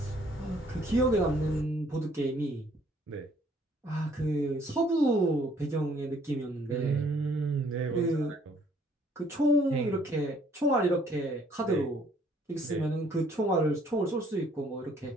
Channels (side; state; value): both; normal; correlation 0.62